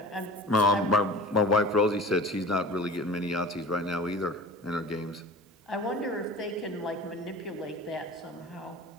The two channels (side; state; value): both; normal; correlation 0.38